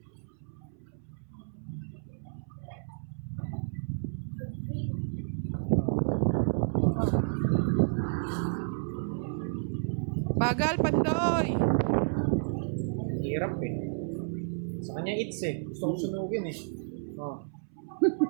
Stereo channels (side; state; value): left; silent; 57 dB below the other